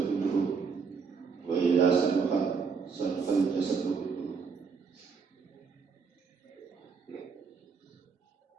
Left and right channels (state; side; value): quieter; left; 5.5 dB